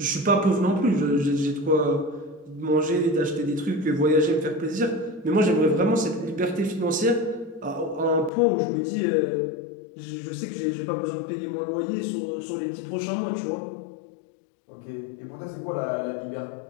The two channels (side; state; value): right; drops out; at 8.3 s